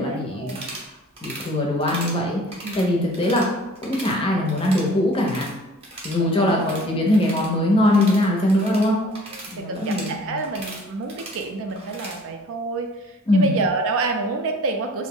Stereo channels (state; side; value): normal; both; correlation 0.50